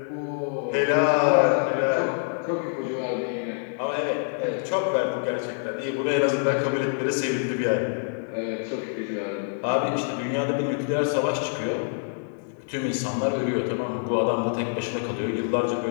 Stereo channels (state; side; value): silent; right; digital silence